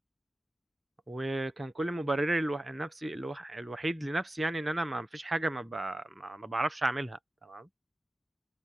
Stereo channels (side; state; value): both; normal; correlation 0.94